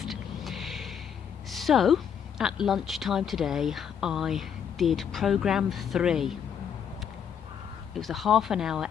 So, at lunchtime today, I did program 3. It was a half-an-hour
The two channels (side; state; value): right; quieter; 8.0 dB